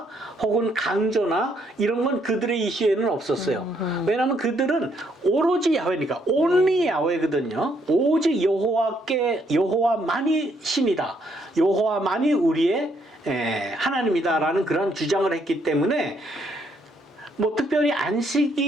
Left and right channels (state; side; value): normal; both; correlation 0.71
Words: 혹은 강조나 이런 건 그들의 이슈에는 없었어요. 왜냐하면 그들은 오로지 야훼니까, only 야훼거든요. 오직 여호와만이 신이다. 여호와만이 우리의 하나님이다라는 그런 주장을 했기 때문에 특별히